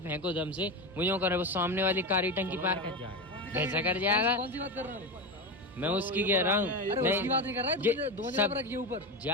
दम से, वो जो कर रहा है, वो सामने वाली कारी टंकी पार कर जाएगा। कैसा कर जाएगा? कौन सी बात कर रहा है? मैं उसकी कह रहा हूँ। नहीं बात नहीं कर रहा है, दो जगह पर रखिए ऊपर।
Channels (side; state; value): both; normal; correlation 0.18